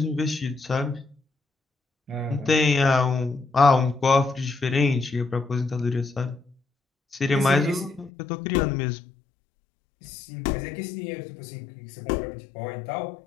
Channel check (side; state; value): right; drops out; at 8.1 s